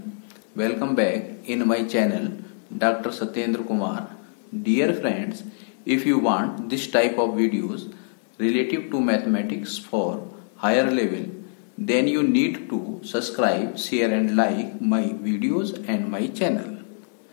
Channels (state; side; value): silent; right; digital silence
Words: Welcome back in my channel Dr. Satyendra Kumar. Dear friends, if you want this type of videos relative to mathematics for higher level, then you need to subscribe, share and like my videos and my channel.